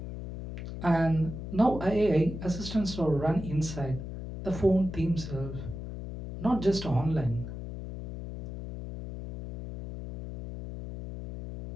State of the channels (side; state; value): left; noise; hum, 8 dB below the sound